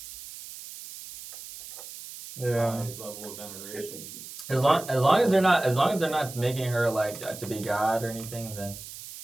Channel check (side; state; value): right; noise; hiss, 13 dB below the sound